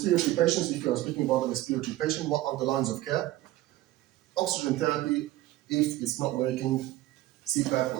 patients, if you are speaking about the respiratory patient, what are the lines of care? Oxygen therapy, if it's not working, CPAP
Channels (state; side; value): quieter; left; 16.0 dB